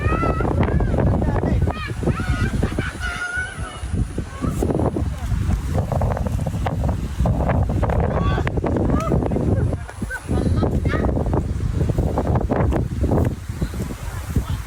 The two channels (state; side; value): identical; both; correlation 1.00